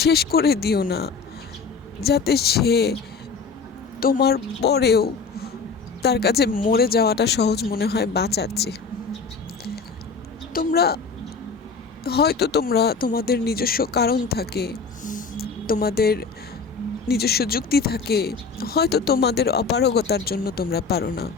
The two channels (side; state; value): right; quieter; 4.9 dB